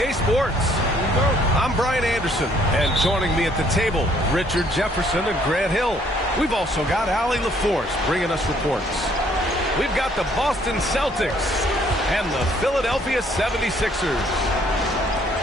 Sports. I'm Brian Anderson, and joining me at the table, Richard Jefferson and Grant Hill. We've also got Allie LaForce bringing us reports. We've got the Boston Celtics and the Philadelphia 76ers.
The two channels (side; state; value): both; normal; correlation 0.64